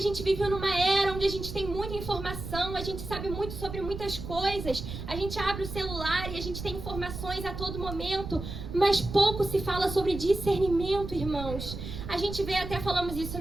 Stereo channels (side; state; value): right; noise; rumble, 8 dB below the sound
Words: gente vive numa era onde a gente tem muita informação, a gente sabe muito sobre muitas coisas, a gente abre o celular e a gente tem informações a todo momento, mas pouco se fala sobre discernimento, irmãos. A gente vê, até falamos isso